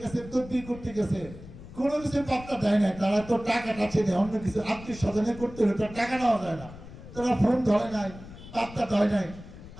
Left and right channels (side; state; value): left; noise; rumble, 16 dB below the sound